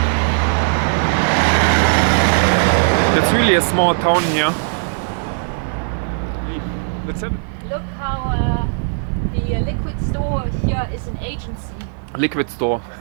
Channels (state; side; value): silent; left; 61 dB below the other